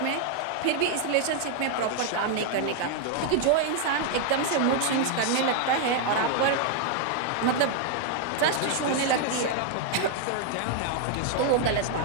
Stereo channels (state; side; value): different; both; correlation 0.00